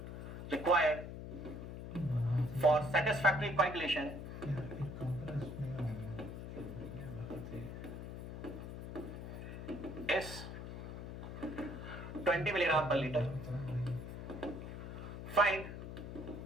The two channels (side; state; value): left; noise; hum, 8 dB below the sound